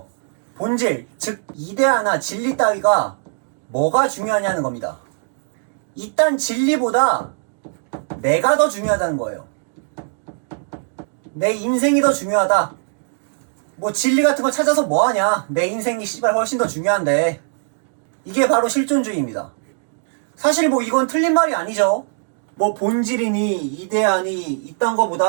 본질, 즉 이데아나 진리 따위가 뭐가 중요하냐는 겁니다. 일단 진리보다 내가 더 중요하다는 거예요. 내 인생이 더 중요하다. 뭐 진리 같은 거 찾아서 뭐하냐. 내 인생이 씨발 훨씬 더 중요한데. 이게 바로 실존주의입니다. 사실 뭐 이건 틀린 말이 아니죠. 뭐 본질이니 이데아니 이딴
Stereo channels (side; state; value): left; silent; digital silence